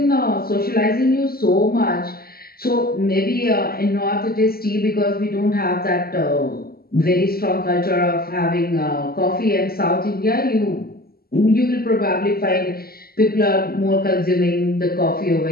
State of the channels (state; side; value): late; right; 0.44 ms